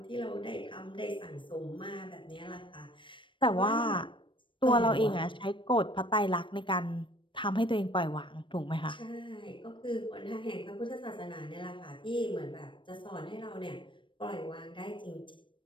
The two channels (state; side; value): late; right; 0.24 ms